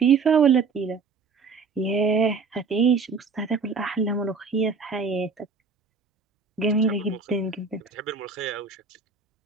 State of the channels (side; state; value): left; quieter; 4.9 dB